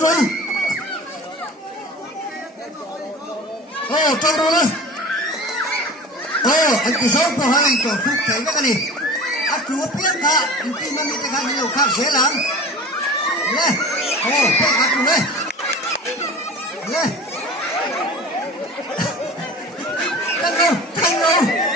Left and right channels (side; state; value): both; normal; correlation 0.37